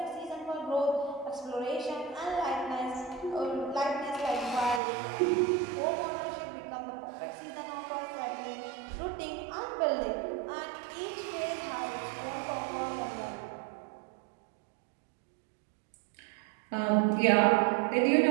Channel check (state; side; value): drops out; left; at 4.8 s